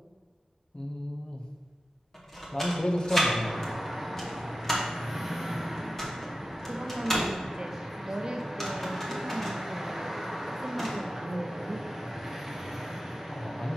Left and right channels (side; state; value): both; normal; correlation 0.92